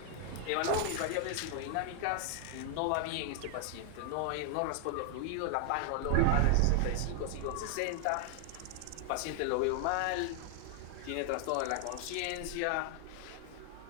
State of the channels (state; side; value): different; both; correlation 0.00